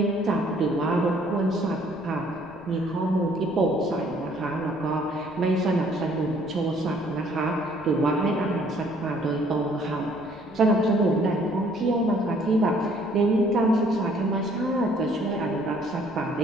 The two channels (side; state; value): left; noise; rumble, 24 dB below the sound